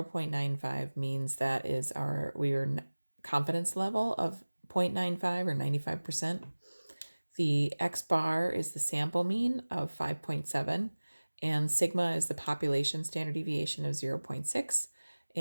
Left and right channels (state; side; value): inverted; both; correlation -1.00